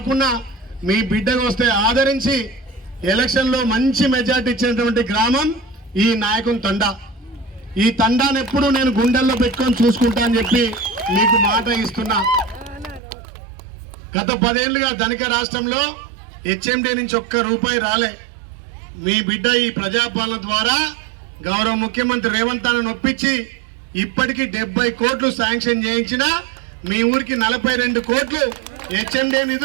మీ బిడ్డకు వస్తే ఆదరించి ఎలక్షన్లో మంచి మెజార్టీ ఇచ్చినటువంటి గ్రామం ఈ నాయకుని తండా. ఈ తండాను ఎప్పుడు నేను గుండెల్లో పెట్టుకొని చూసుకుంటా అని చెప్పి మీకు మాట ఇస్తున్నా. గత 10 ఏళ్లుగా ధనిక రాష్ట్రంలో హెచ్ఎండి నుంచి ఒక్క రూపాయి రాలే. మీ బిడ్డ ఈ ప్రజాపాలన ద్వారా గౌరవ ముఖ్యమంత్రి రేవంత్ అన్నను ఒప్పించి ఇప్పటికీ 70 కోట్లు శాంక్షన్ చేయించిన మీ ఊరికి 42 కోట్లు హెచ్ఎండి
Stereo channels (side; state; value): left; drops out; at 13.0 s